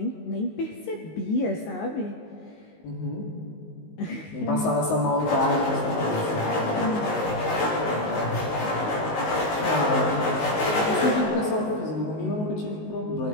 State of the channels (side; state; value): right; late; 19 ms